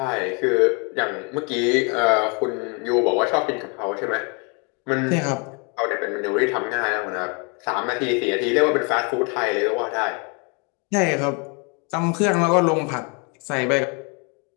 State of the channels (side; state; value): right; quieter; 34.0 dB